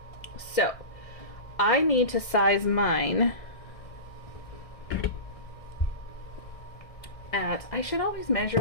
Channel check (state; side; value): late; right; 1.6 ms